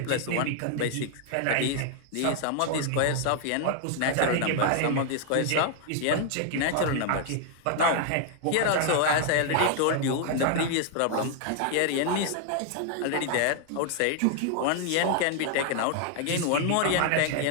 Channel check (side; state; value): both; different; correlation 0.00